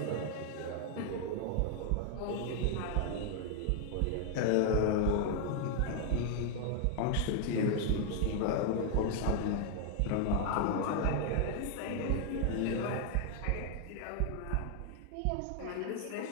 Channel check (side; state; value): both; different; correlation 0.00